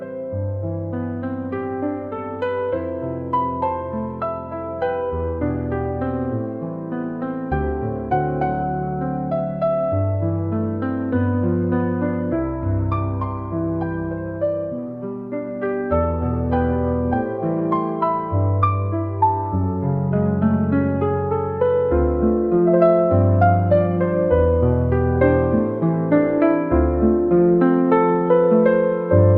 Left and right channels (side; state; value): both; identical; correlation 1.00